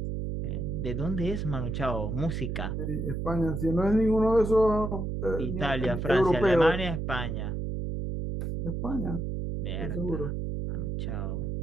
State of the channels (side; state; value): right; noise; hum, 3 dB below the sound